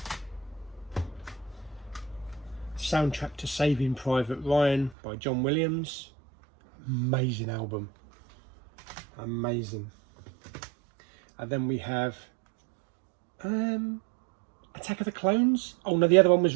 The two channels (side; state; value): left; drops out; at 5.0 s